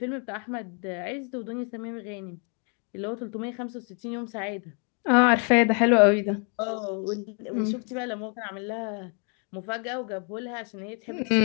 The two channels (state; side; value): quieter; right; 39.5 dB